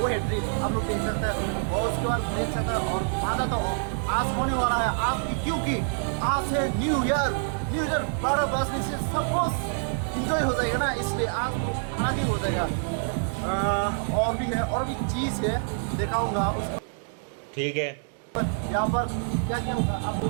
है ड्रिंक, आप लोग देख सकते हैं। और उसके बाद देख सकते हैं। और मज़ा तो आज होने वाला है आज, क्योंकि आज है न्यू ईयर। 12 बजने से सब कुछ इंजॉय हो जाएगा ना, इसलिए आज तो आगे हो जाएगा। और भी है, और भी चीज़ है, दिखाऊंगा उसको। ठीक है, यहाँ पर क्या क्या होगा आपको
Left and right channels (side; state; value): left; silent; digital silence